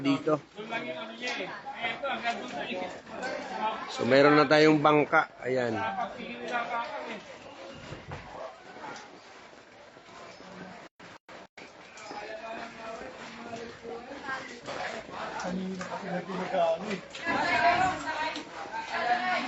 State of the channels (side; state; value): both; identical; correlation 1.00